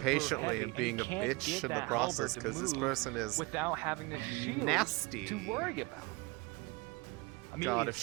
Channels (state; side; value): quieter; left; 25.5 dB